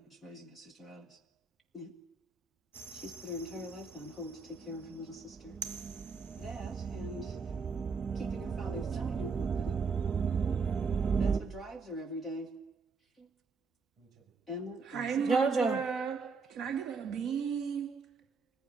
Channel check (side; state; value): left; quieter; 4.8 dB